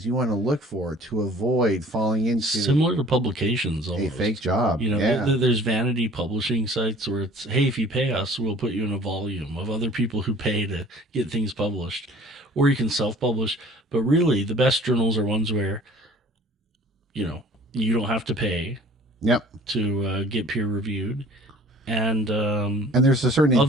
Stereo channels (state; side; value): normal; both; correlation 0.50